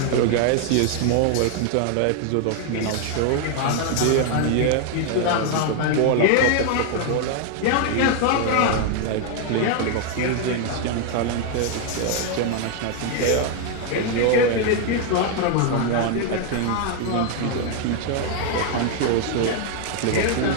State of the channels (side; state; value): both; different; correlation 0.00